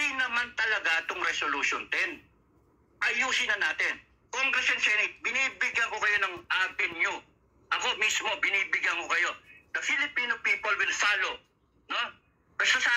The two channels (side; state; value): both; identical; correlation 1.00